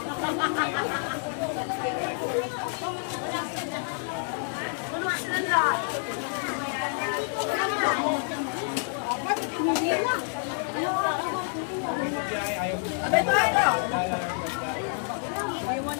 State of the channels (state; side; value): silent; right; 56 dB below the other